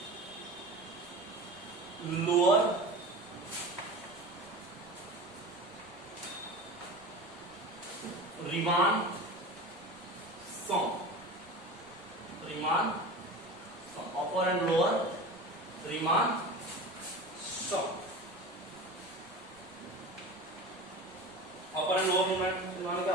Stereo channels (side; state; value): right; noise; rumble, 28 dB below the sound